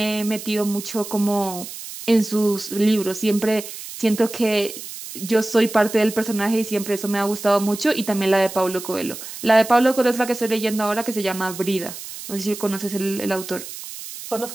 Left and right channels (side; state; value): right; noise; hiss, 11 dB below the sound